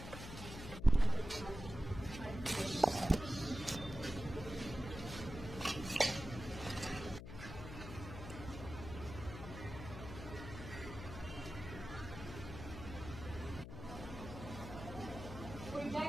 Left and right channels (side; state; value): left; noise; hum, 10 dB below the sound